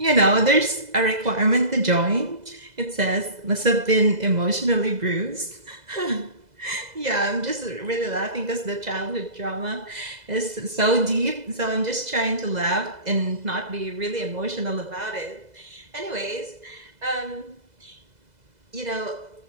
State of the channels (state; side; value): late; left; 2.0 ms